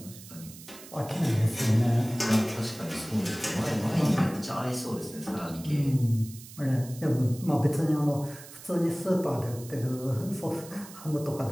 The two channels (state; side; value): noise; right; hiss, 17 dB below the sound